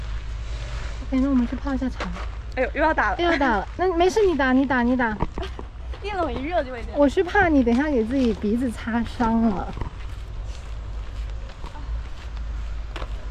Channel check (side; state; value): both; identical; correlation 1.00